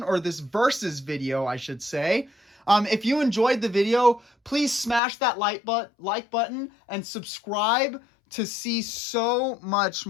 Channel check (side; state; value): right; drops out; at 5.0 s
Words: or this versus video, I should say. If you enjoyed the video, please smash that like button and subscribe to see so much